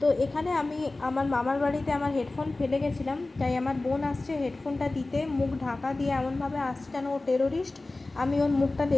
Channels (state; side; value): quieter; right; 3.1 dB